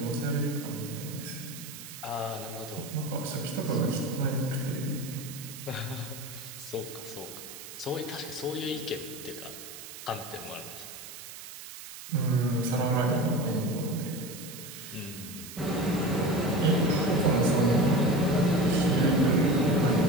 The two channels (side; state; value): right; noise; hiss, 13 dB below the sound